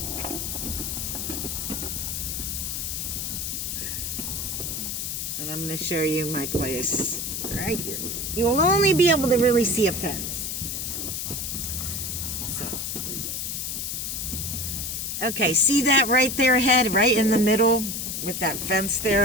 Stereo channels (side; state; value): left; noise; hiss, 3 dB below the sound